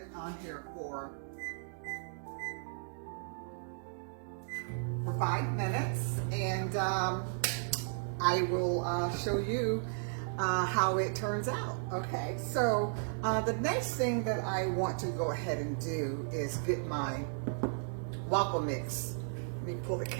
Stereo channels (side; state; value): left; silent; digital silence